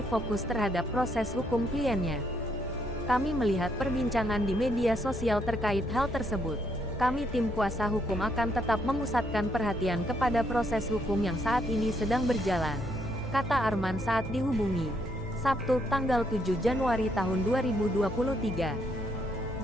fokus terhadap proses hukum kliennya. Kami melihat perbincangan di media sosial terkait hal tersebut. Kami tim kuasa hukum akan tetap memusatkan perhatian kepada proses hukum yang saat ini sedang berjalan, kata Arman saat dihubungi Sabtu tanggal 7 Januari tahun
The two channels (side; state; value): both; normal; correlation 0.73